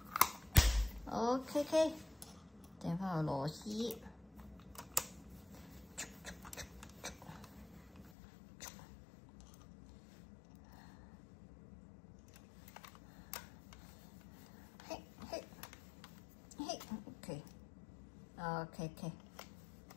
，OK， 掟翻個螺絲。OK，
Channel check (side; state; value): right; drops out; at 8.1 s